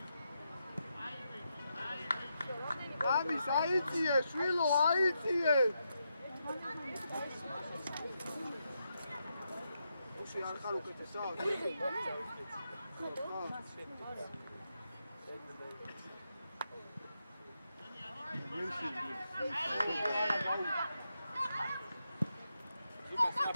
ამის აიწიე, შვილო, აიწიე. ოში არ ხარ უკეთესა? ზუკას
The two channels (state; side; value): inverted; both; correlation -0.84